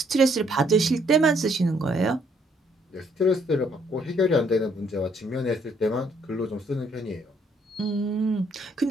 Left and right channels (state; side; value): normal; both; correlation 0.68